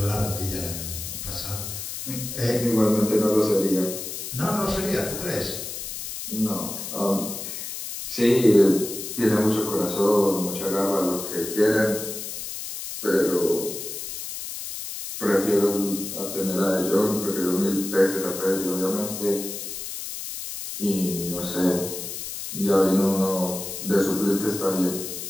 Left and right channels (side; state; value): left; noise; hiss, 7 dB below the sound